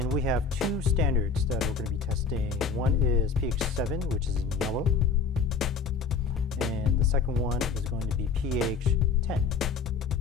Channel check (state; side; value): quieter; right; 5.3 dB